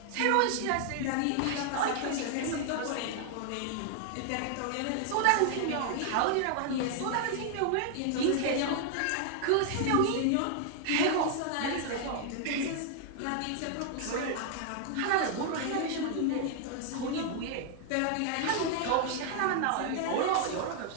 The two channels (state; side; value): different; both; correlation 0.00